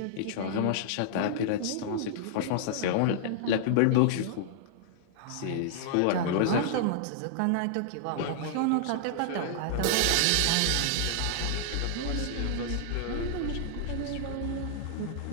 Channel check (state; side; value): different; both; correlation -0.01